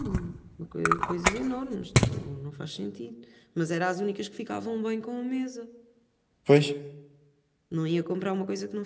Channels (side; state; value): both; identical; correlation 1.00